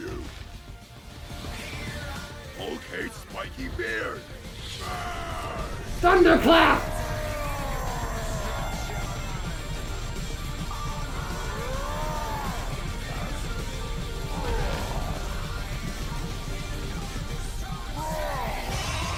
Hulk hates spiky beard! Thunderclap!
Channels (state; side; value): identical; both; correlation 1.00